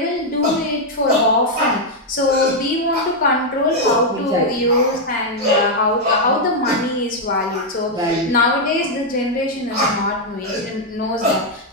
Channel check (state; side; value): normal; both; correlation -0.01